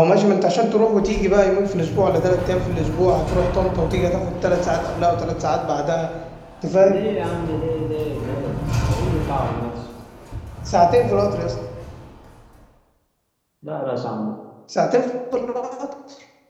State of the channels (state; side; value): identical; both; correlation 1.00